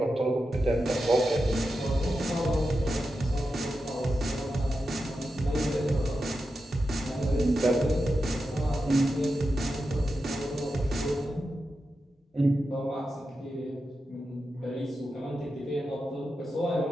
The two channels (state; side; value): normal; both; correlation 0.89